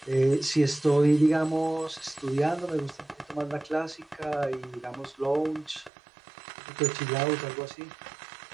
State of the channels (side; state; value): left; drops out; at 5.9 s